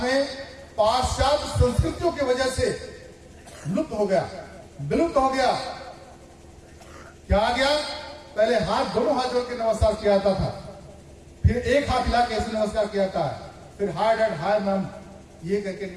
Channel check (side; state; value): both; identical; correlation 1.00